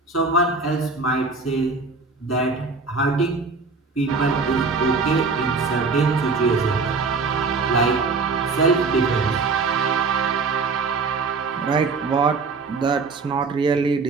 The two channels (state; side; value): quieter; left; 4.3 dB